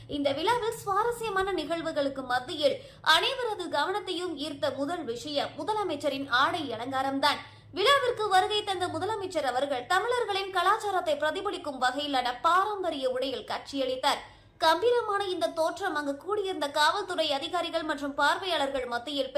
இந்த விழாவில் சுவாரஸ்யமான நிகழ்வுகளுக்கு மத்தியில் அனைவரது கவனத்தையும் ஈர்த்த முதல் விஷயம் முதலமைச்சரின் ஆடை அலங்காரம்தான். விழாவிற்கு வருகை தந்த முதலமைச்சர் அவர்கள் தமிழர்களின் கலாச்சாரத்தை பிரதிபலிக்கும் வகையிலான பாரம்பரிய உடையில் காட்சியளித்தார். கம்பீரமான இந்த தோற்றம் அங்கு கூடியிருந்த காவல்துறை அதிகாரிகள் மற்றும் பார்வையாளர்கள் மத்தியில்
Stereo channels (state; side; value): identical; both; correlation 1.00